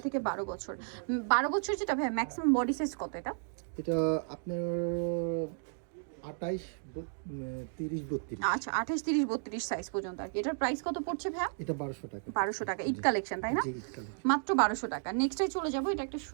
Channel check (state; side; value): silent; left; digital silence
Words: থেকে 12 বছর। 12 বছর যেটা ভাই ম্যাক্সিমাম বডি সাইজ কত এটা? এটা আপনার 28 30 32। আচ্ছা, 28 30 32 সাইজ পর্যন্ত আর কি। এটার প্রাইস কত পড়ছে ভাই? এটা 1200 টাকা। 1200 টাকা ঈদ কালেকশন, তাই না? জি, ঈদ কালেকশন। মাত্র 1200 টাকা। নেক্সটে চলে যাব, এটা একটা